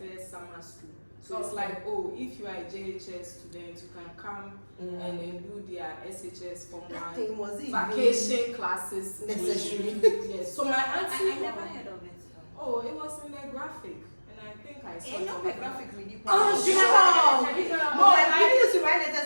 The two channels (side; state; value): both; inverted; correlation -1.00